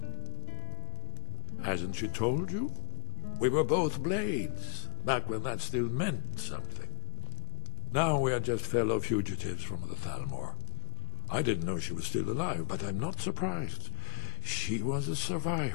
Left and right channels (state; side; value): silent; right; digital silence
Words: Hasn't she told you? We were both blades, back when that still meant something. Now we are just fellow fugitives from the Thalmor. I didn't know she was still alive, but I'm not surprised. She was a